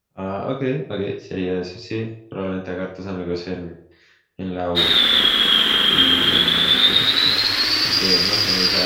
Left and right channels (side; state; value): both; identical; correlation 1.00